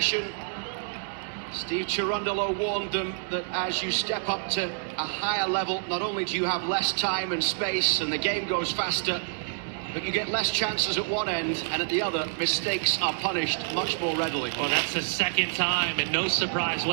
Steve Cherundolo warned them that as you step up to a higher level, not only do you have less time and space and the game goes faster, but you get less chances at one end, and at the other, mistakes are punished much more readily. Well, that's the second time, and no surprise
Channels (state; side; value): silent; left; 57 dB below the other